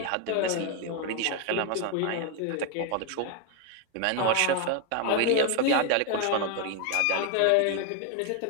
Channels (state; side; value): different; both; correlation 0.01